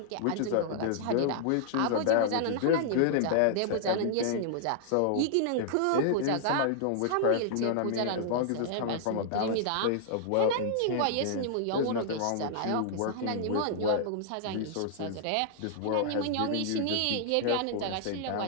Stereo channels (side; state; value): both; different; correlation -0.01